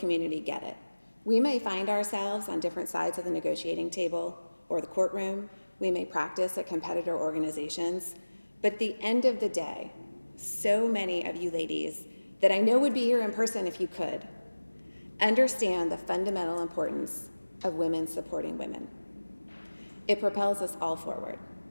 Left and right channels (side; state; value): both; inverted; correlation -1.00